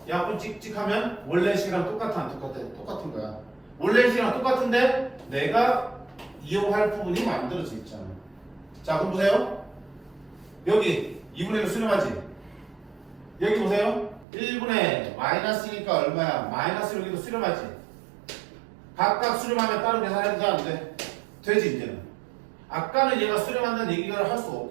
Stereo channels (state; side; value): drops out; left; at 14.2 s